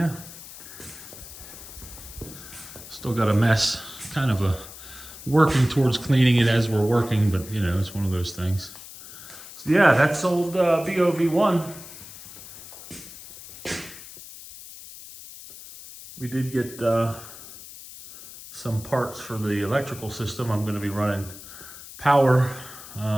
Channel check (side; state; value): left; noise; hiss, 15 dB below the sound